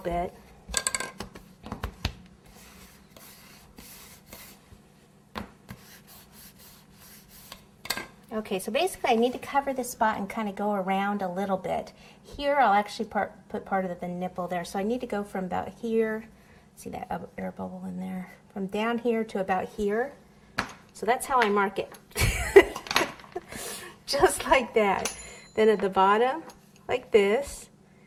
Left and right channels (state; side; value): identical; both; correlation 1.00